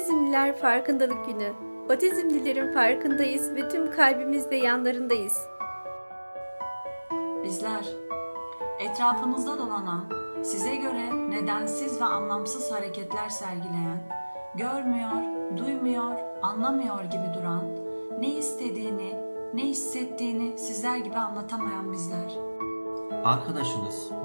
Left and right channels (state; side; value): inverted; both; correlation -1.00